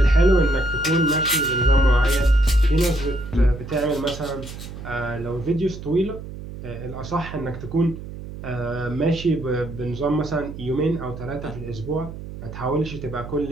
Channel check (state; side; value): noise; right; hum, 11 dB below the sound